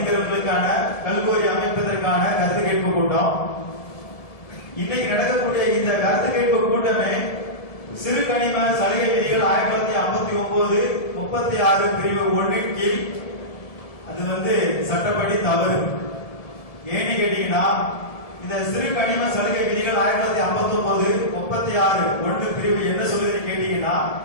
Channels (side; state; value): right; late; 1.7 ms